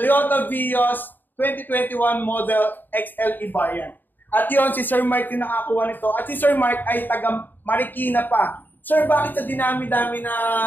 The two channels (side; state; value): right; late; 0.091 ms